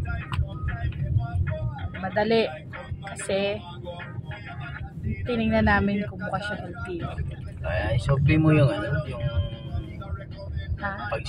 Madali. Kasi tinignan namin kung mukha siya LTO. Kaya isopli mo yung yung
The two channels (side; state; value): both; identical; correlation 1.00